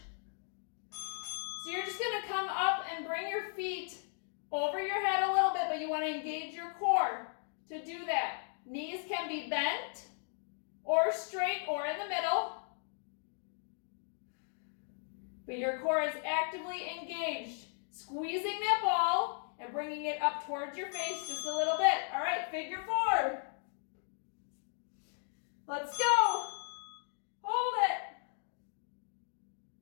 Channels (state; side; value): silent; right; 53 dB below the other